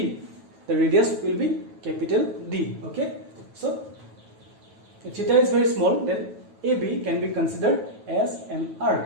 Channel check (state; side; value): late; left; 9.2 ms